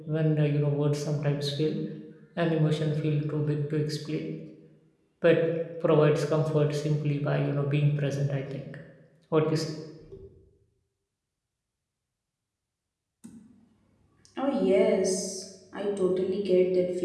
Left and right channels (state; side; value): identical; both; correlation 1.00